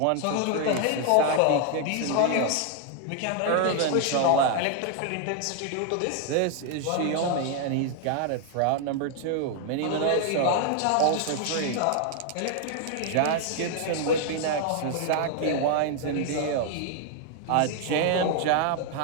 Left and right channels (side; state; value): both; different; correlation 0.00